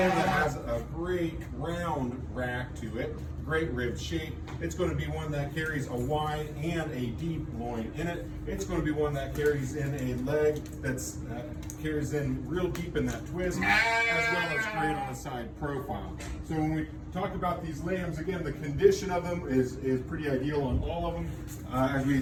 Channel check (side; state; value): both; identical; correlation 1.00